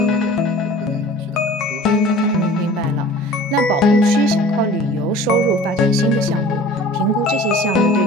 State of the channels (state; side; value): normal; both; correlation 0.44